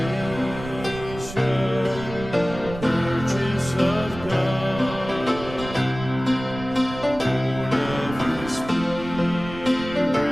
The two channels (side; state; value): right; noise; rumble, 12 dB below the sound